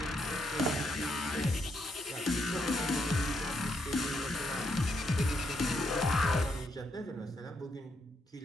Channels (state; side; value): normal; both; correlation 0.78